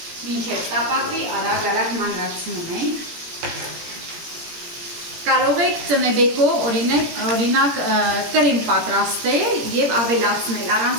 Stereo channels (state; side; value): late; left; 17 ms